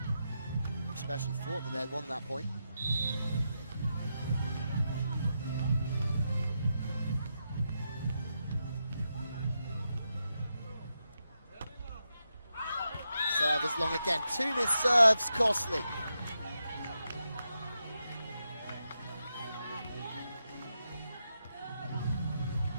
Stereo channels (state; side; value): inverted; both; correlation -0.86